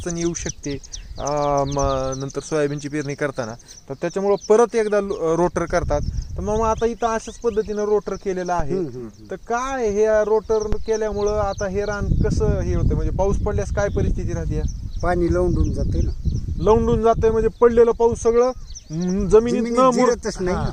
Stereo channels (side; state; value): both; identical; correlation 1.00